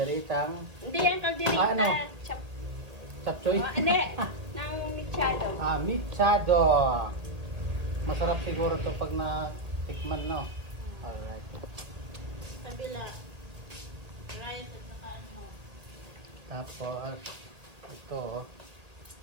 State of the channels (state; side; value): late; left; 1.9 ms